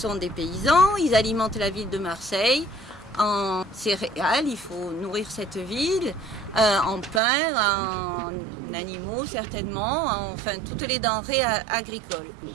des paysans, ils alimentent la ville de Marseille en céréales, il faut nourrir cette ville, en pain, en animaux certainement, enfin toutes les denrées agricoles.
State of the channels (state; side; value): drops out; left; at 7.2 s